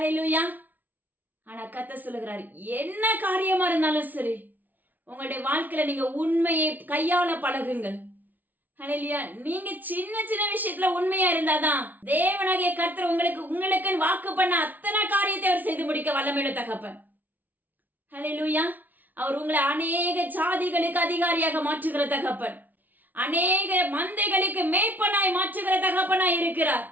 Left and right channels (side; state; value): left; late; 0.081 ms